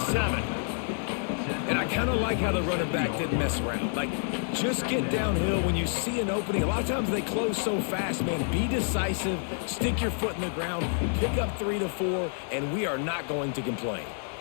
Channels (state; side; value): silent; right; 59 dB below the other